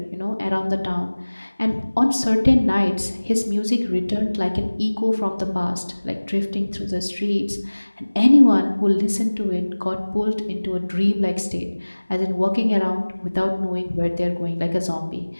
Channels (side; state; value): both; inverted; correlation -1.00